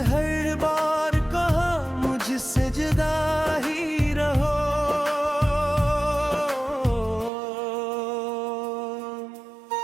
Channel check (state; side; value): drops out; left; at 7.3 s